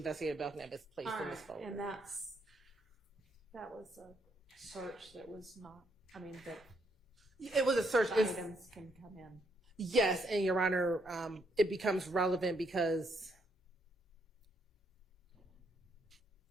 Belknap is placed in this folder. And that was a search that was not, I mean, that it was a search. Items can come in. Yes, and Your Honor, it becomes relevant because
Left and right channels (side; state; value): both; normal; correlation 0.74